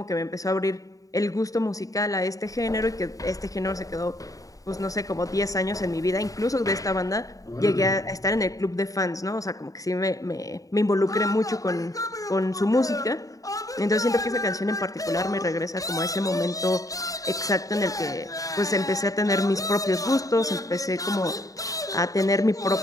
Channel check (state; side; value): late; right; 0.17 ms